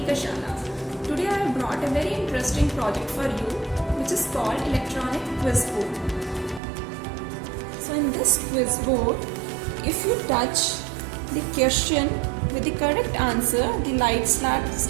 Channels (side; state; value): left; drops out; at 6.6 s